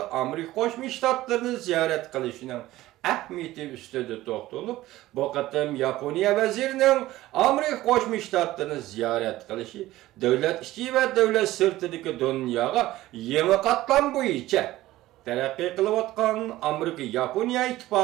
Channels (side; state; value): left; quieter; 16.3 dB